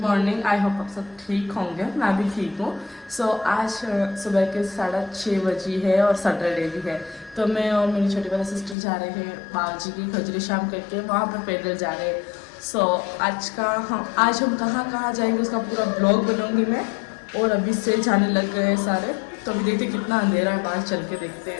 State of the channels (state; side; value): drops out; right; at 8.8 s